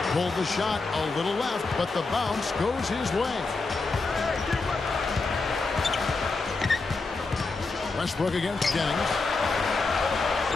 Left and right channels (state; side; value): quieter; right; 3.8 dB